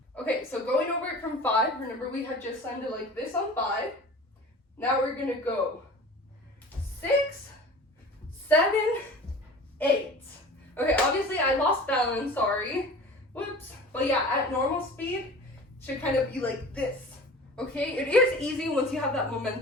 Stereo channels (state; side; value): normal; both; correlation 0.40